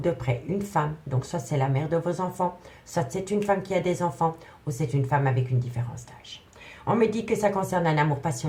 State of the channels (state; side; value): identical; both; correlation 1.00